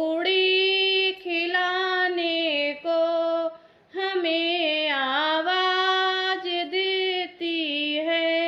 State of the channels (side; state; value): both; identical; correlation 1.00